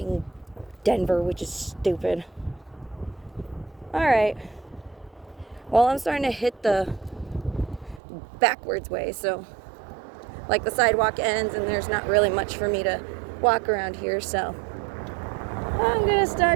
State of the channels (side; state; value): left; drops out; at 8.0 s